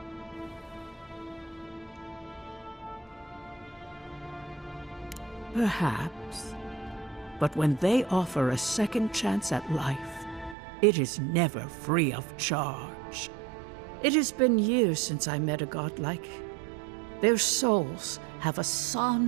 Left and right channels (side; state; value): left; drops out; at 10.6 s